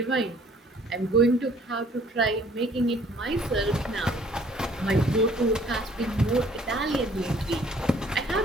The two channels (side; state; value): both; normal; correlation 0.58